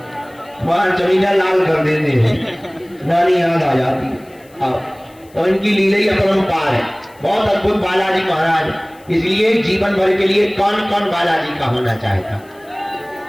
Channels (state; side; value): noise; left; hiss, 29 dB below the sound